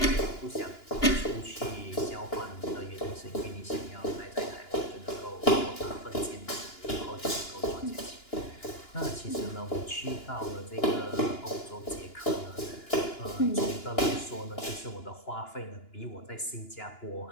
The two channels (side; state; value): right; late; 2.9 ms